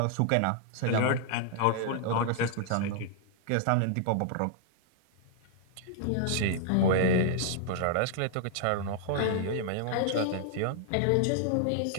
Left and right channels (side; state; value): both; different; correlation -0.01